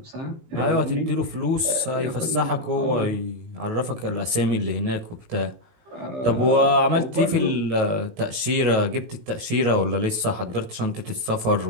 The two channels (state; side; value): late; left; 19 ms